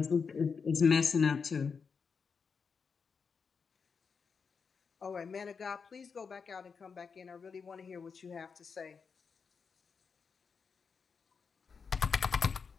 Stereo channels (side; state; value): right; quieter; 5.6 dB